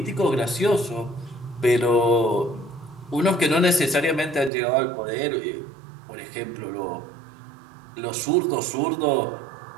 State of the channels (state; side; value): drops out; left; at 4.5 s